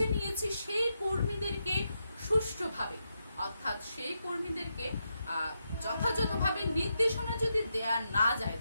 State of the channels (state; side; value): inverted; both; correlation -0.84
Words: নিয়েছি সেই কর্মীদেরকে সুষ্ঠুভাবে, অর্থাৎ সেই কর্মীদেরকে যথাযথভাবে নির্দেশনা যদি দেয়া না যায়